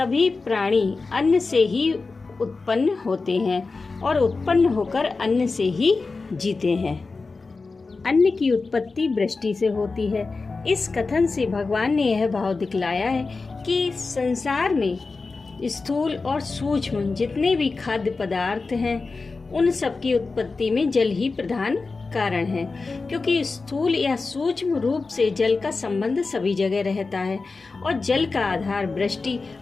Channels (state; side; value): quieter; right; 4.0 dB